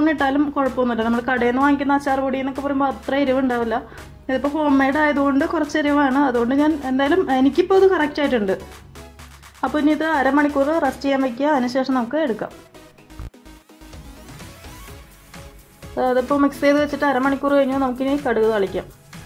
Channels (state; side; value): identical; both; correlation 1.00